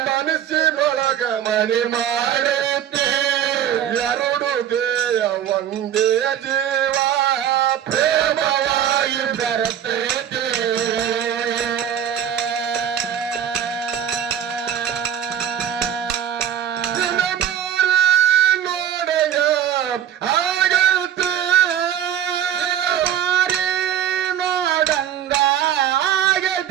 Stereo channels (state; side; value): quieter; left; 9.9 dB